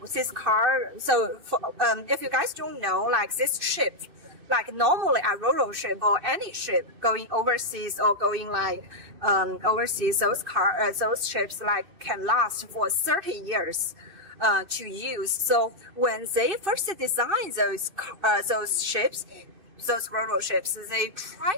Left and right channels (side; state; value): left; late; 2.6 ms